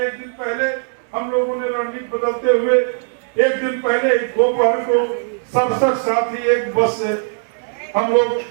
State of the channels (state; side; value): silent; left; digital silence